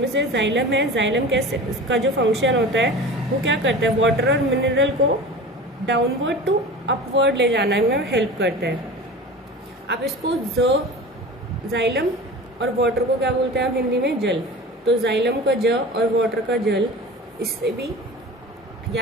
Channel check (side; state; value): both; normal; correlation 0.35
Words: से जाइलम है, जाइलम कैसे इसका जो फंक्शन होता है वो क्या करता है, वाटर और मिनरल को डाउनवर्ड टू अपवर्ड ले जाने में हेल्प करता है। आप इसको जाइलम और वाटर को क्या बोलते हैं आप हिंदी में, जल। तो जाइलम का ज और वाटर का जल, इससे भी